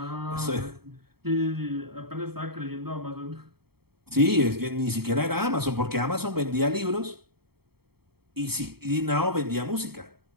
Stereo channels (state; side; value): late; left; 0.96 ms